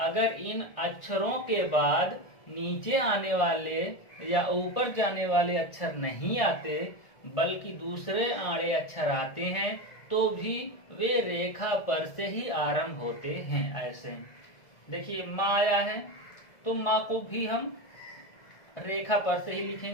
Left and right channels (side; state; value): right; late; 1.7 ms